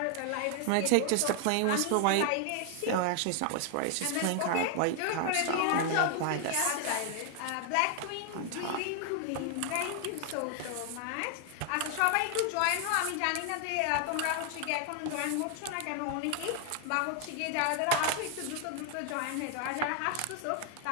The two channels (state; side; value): different; both; correlation 0.00